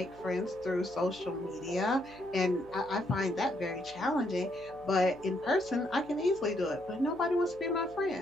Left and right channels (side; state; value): left; noise; hum, 24 dB below the sound